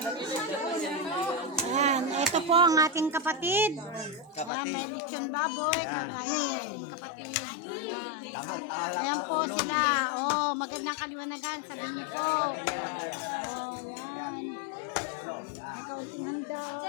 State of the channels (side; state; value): right; drops out; at 4.5 s